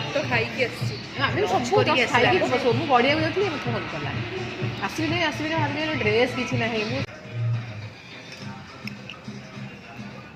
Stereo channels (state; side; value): identical; both; correlation 1.00